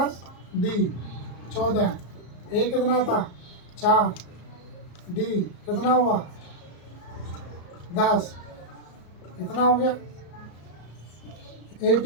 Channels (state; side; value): late; right; 34 ms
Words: D 14, A कितना था 4, D कितना हुआ 10, कितना हो गया,